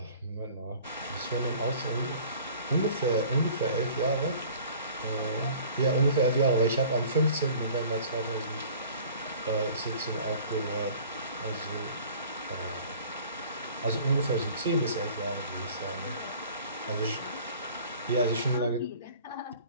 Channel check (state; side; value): inverted; both; correlation -0.48